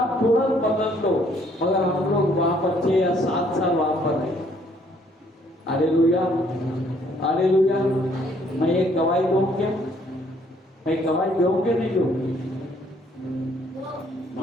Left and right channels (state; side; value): normal; both; correlation 0.64